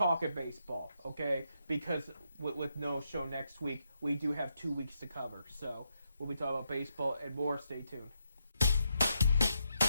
baseball, okay? Because with no show next week, we do have 2 weeks to cover. So we'll be talking about baseball and more. Stay tuned.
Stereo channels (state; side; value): inverted; both; correlation -0.80